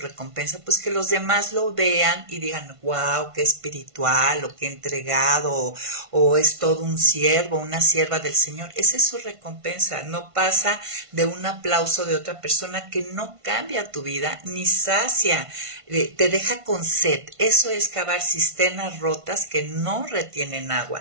pues que los demás lo vean y digan, wow, qué espiritual, o qué entregado, o es todo un siervo, una sierva del Señor. Esa es su recompensa, no pasa de un aplauso de otra persona que no cambia tu vida, ni sacia, te deja con sed. Eso es cavar cisternas rotas que no retienen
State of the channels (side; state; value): left; late; 1.5 ms